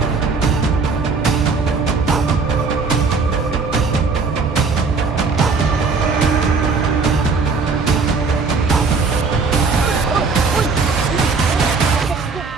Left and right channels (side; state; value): left; quieter; 4.5 dB